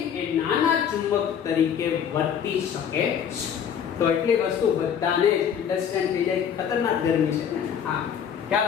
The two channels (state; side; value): quieter; right; 8.2 dB